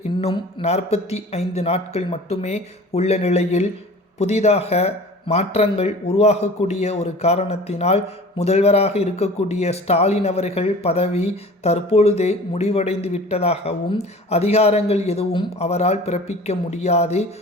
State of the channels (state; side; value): normal; both; correlation 0.42